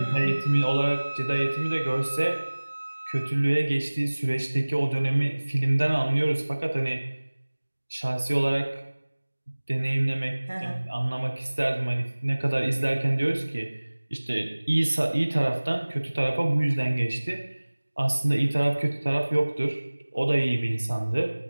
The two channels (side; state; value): both; inverted; correlation -1.00